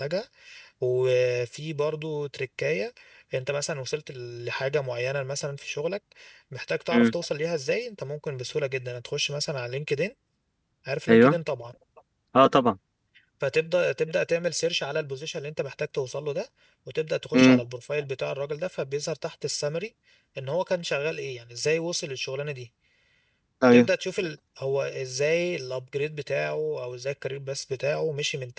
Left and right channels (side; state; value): both; identical; correlation 1.00